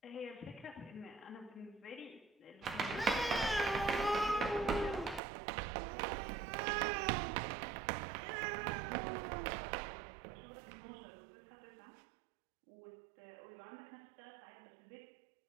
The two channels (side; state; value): left; drops out; at 5.2 s